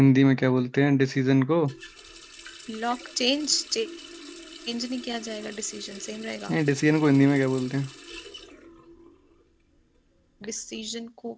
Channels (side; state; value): both; identical; correlation 1.00